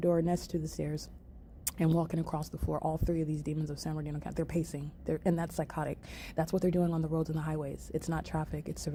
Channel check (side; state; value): both; identical; correlation 1.00